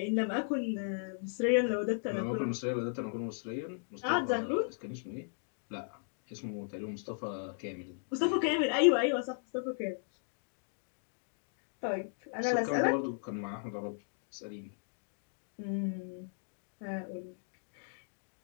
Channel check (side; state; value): right; silent; digital silence